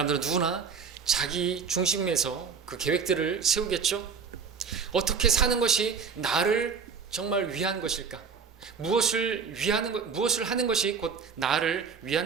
누구나 자기 중심에서 그 계획들을 세우겠죠. 어떻게 사는 것이 나를 정말 위한 것일까? 무엇을 하는 것이 곧 나를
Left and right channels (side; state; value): left; quieter; 5.9 dB